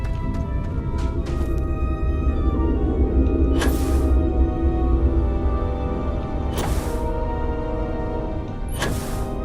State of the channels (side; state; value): both; identical; correlation 1.00